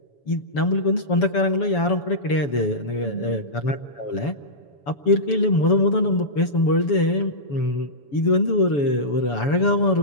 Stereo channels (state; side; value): late; right; 7.0 ms